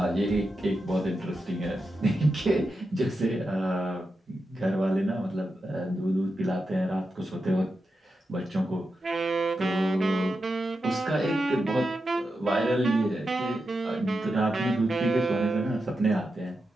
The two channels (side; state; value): both; normal; correlation 0.88